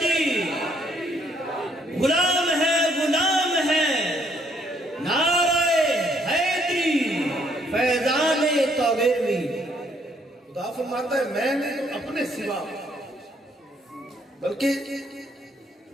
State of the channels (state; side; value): normal; both; correlation 0.68